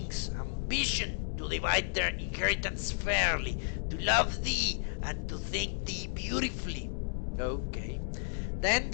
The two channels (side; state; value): right; silent; digital silence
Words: ambition to divide their inheritance fairly, to love thee and to think thee beautifully. Okay. Then